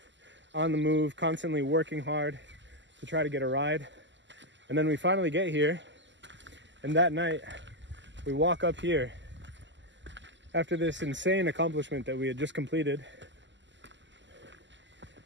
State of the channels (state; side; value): late; left; 0.53 ms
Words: on the move, constantly working hard to try to get a ride. And then we finally get here, and that night we walk up here after this insane accomplishment that we had just completed.